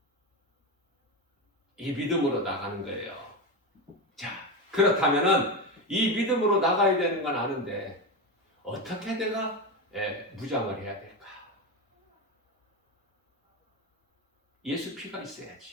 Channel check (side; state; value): both; normal; correlation 0.16